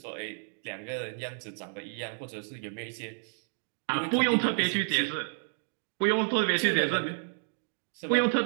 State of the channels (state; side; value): silent; left; digital silence